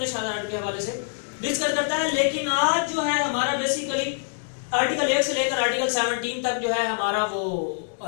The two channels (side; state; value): right; silent; digital silence